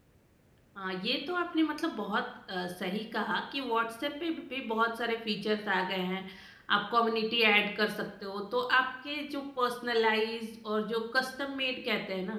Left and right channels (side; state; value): both; identical; correlation 1.00